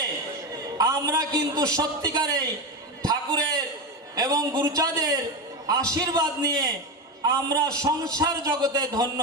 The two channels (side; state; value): both; normal; correlation 0.17